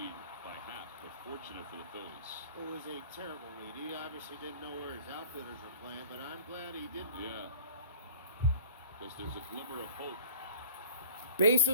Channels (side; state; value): both; inverted; correlation -0.38